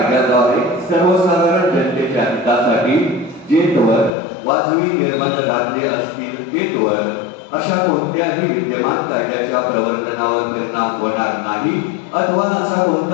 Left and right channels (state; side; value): drops out; right; at 4.1 s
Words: सर्वसाधारण जनतेच्या हितासाठी जेतवर वाजवी निर्बंध घातले असतील तेतवर अशा कोणत्याही विद्यमान कायद्याच्या प्रवर्तनावर परिणाम होणार नाही अथवा असा